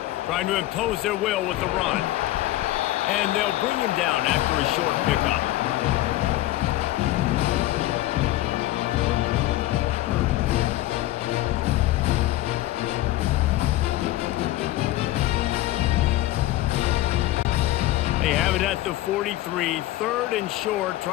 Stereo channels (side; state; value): right; quieter; 16.0 dB